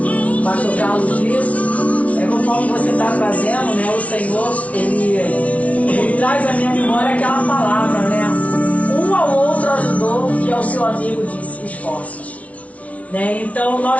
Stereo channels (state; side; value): late; right; 0.066 ms